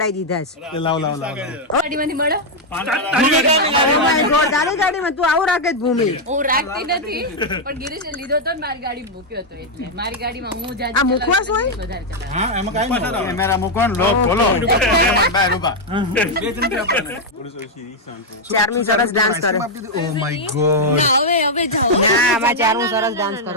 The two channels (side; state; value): both; normal; correlation -0.01